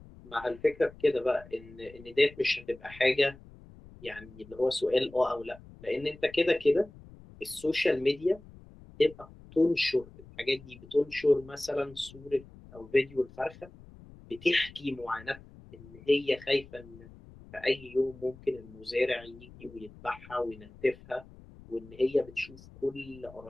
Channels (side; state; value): left; noise; rumble, 20 dB below the sound